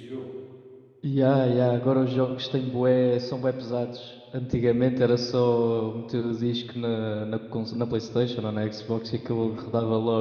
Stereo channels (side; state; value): both; identical; correlation 1.00